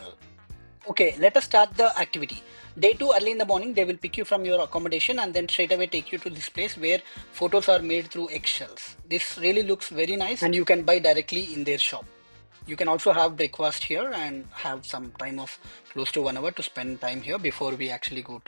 Okay, let us start the activity. Day 2, early in the morning, they will pick you from your accommodation and then straight away take you to this place where photos are made through eggshells. This really looks very nice and you can buy directly in their shop. You can also have breakfast here and have some time of close to 1 hour to spend time here before we actually go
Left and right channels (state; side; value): inverted; both; correlation -1.00